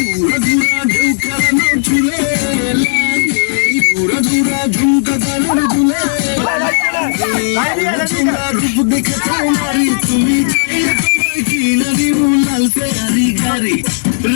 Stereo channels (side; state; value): right; silent; digital silence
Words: দেখে তোমারি তুমি কিনা দিব লাল ফেরারি গাড়ি